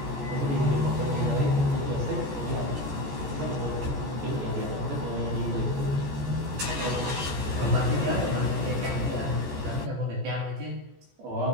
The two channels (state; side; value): late; left; 14 ms